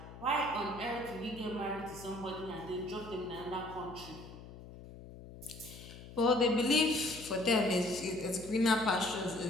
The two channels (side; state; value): left; noise; hum, 15 dB below the sound